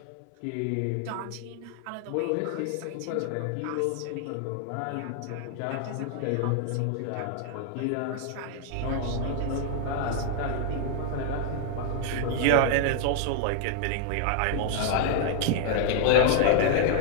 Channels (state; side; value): different; both; correlation 0.00